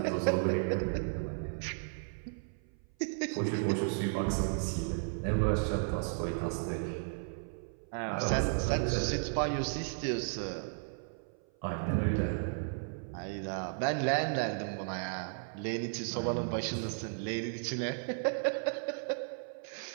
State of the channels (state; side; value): silent; left; 55 dB below the other